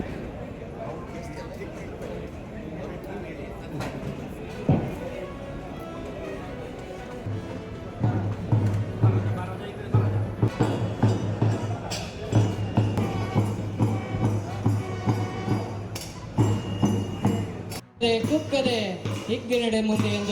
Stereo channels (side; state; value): both; identical; correlation 1.00